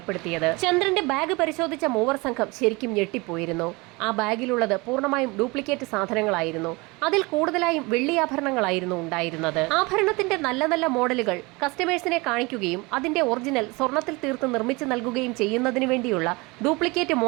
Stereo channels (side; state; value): left; quieter; 25.2 dB